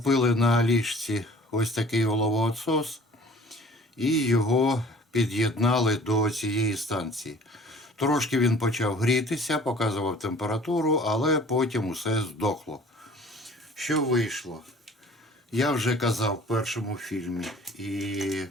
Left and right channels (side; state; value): both; normal; correlation 0.50